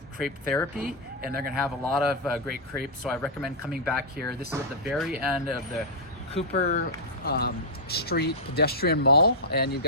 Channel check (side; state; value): both; normal; correlation -0.09